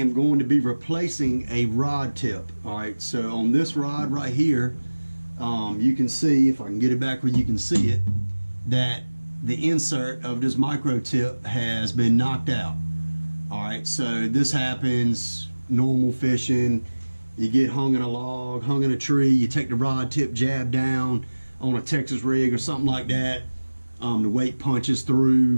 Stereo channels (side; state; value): both; inverted; correlation -1.00